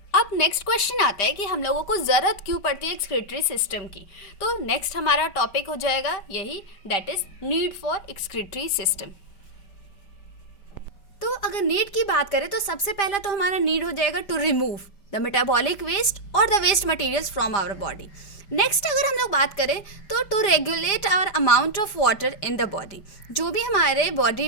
अब नेक्स्ट क्वेश्चन आता है कि हम लोगों को ज़रूरत क्यों पड़ती है एक्सक्रीटरी सिस्टम की। तो नेक्स्ट हमारा टॉपिक हो जाएगा यही, that is need for excretory system. तो अगर नीड की बात करें तो सबसे पहला तो हमारा नीड हो जाएगा to remove the metabolic waste और the waste materials from our body. Next अगर हम लोग बात करें तो to regulate our amount of water in the body, जो भी हमारे बॉडी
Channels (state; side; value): late; right; 5.0 ms